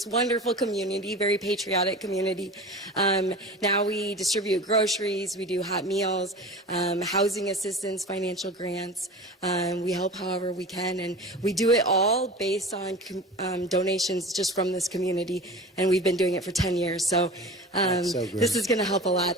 wonderful community, very patriotic community. Now we distribute groceries, we do hot meals, housing assistance, financial grants. We help however we can, and we do it all based on donations just from this community, and we've been doing it for 10 years. So, this is going to help a lot.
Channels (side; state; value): both; normal; correlation 0.35